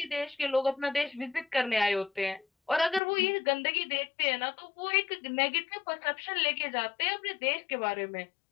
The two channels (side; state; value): right; drops out; at 3.0 s